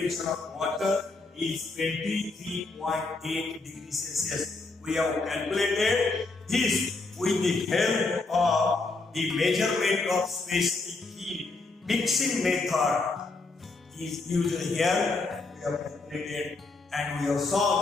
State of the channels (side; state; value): right; quieter; 3.6 dB